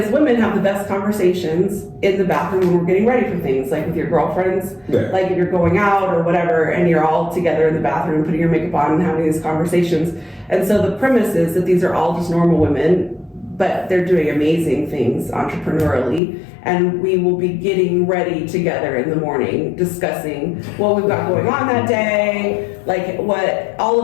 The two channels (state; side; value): drops out; right; at 16.2 s